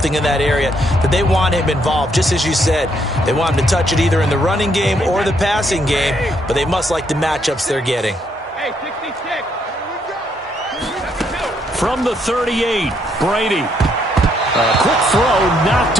in that area that they want him involved. Just as you said, they want him to touch it either in the running game or the passing game, but they must like the matchups they're getting. From the 38, Brady. A quick throw knocked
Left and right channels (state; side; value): normal; both; correlation 0.73